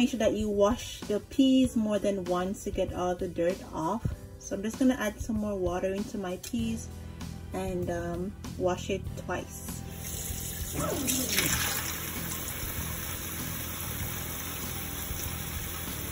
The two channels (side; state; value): both; identical; correlation 1.00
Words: sure that you wash the peas more than once to get all the dirt off. So I'm just going to add some more water into my peas and wash it twice.